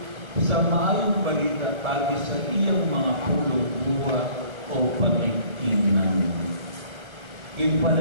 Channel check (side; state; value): left; late; 1.3 ms